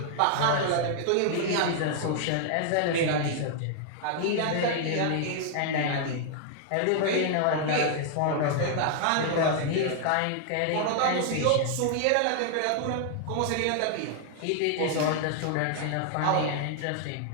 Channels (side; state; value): both; different; correlation 0.00